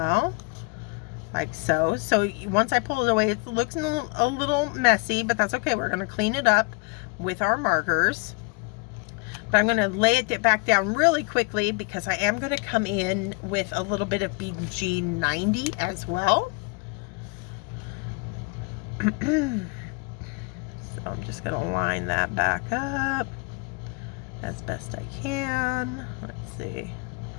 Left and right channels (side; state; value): right; quieter; 30.4 dB